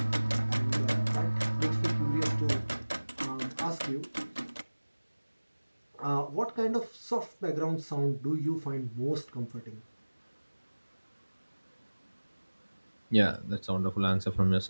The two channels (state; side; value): inverted; both; correlation -1.00